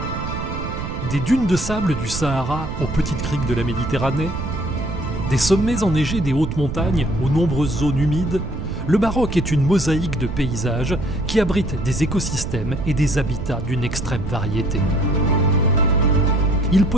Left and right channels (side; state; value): right; noise; rumble, 6 dB below the sound